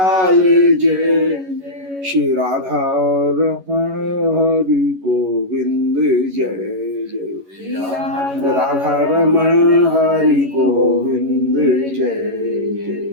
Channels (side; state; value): left; late; 11 ms